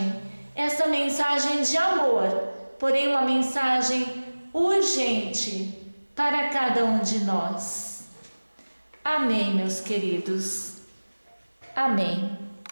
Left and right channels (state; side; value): inverted; both; correlation -1.00